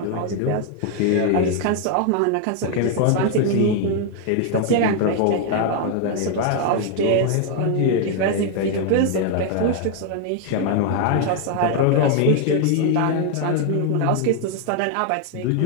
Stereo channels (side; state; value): both; different; correlation 0.00